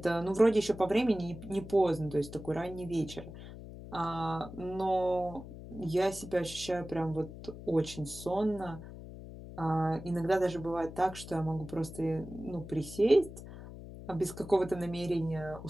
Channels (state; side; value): noise; left; hum, 13 dB below the sound